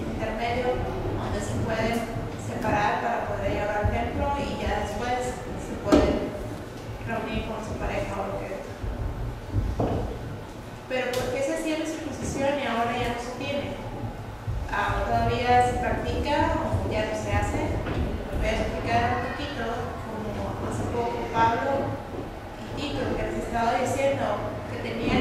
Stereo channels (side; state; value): both; identical; correlation 1.00